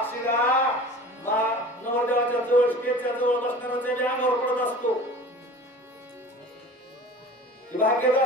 नवरदेवाच्या जवळ स्टेजच्या जवळ बसणाऱ्याच्या अंगावर पडत असतो भाग्यच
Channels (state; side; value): normal; both; correlation 0.40